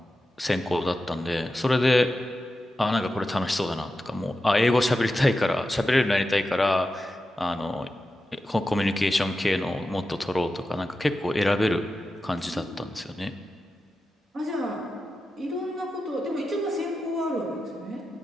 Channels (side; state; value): both; normal; correlation 0.91